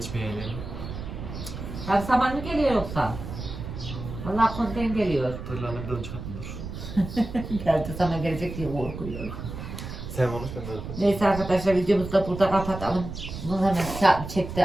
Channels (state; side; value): noise; right; rumble, 9 dB below the sound